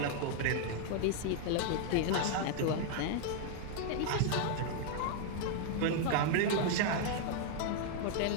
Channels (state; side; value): different; both; correlation -0.01